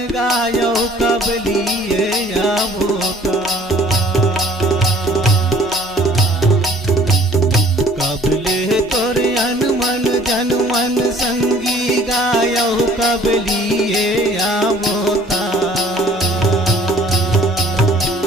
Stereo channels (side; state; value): both; normal; correlation 0.55